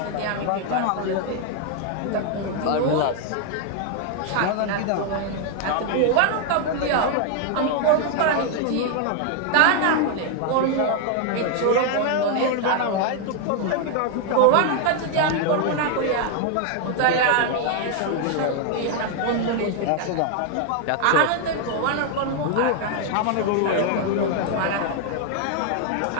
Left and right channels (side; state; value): both; different; correlation 0.00